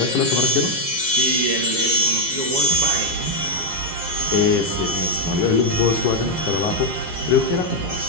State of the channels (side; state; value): left; late; 7.3 ms